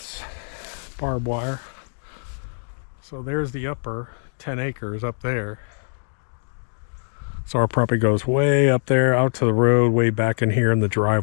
barbed wire. So there's the upper 10 acres up there. So our property goes way up there, out to the road, way back in here, and the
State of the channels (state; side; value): silent; right; digital silence